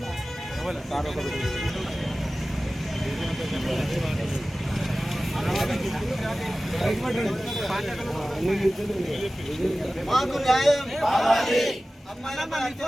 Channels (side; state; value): both; normal; correlation 0.96